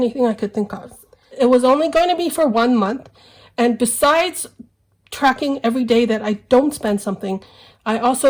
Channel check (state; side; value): identical; both; correlation 1.00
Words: I could think of. It was only going to be for 1 month. And besides tracking every day that I don't spend something, I